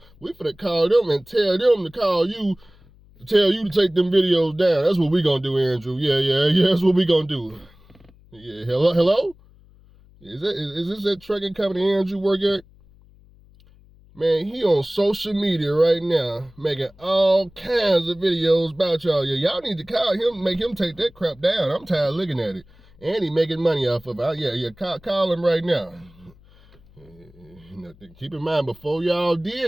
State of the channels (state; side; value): noise; left; hum, 27 dB below the sound